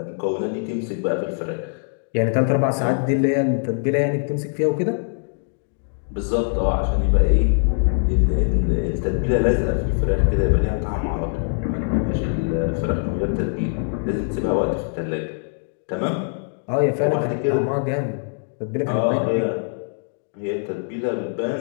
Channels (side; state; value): right; silent; digital silence